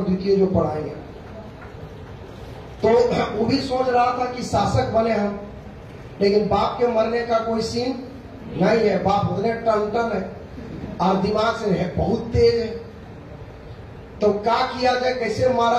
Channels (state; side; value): identical; both; correlation 1.00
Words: जो पढ़ाएंगे। तो वो भी सोच रहा था कि शासक बने हम, लेकिन बाप के मरने का कोई सीन नहीं है। बाप उतने टन है और दिमाग से है बहुत तेज है। तो क्या किया जाए, कैसे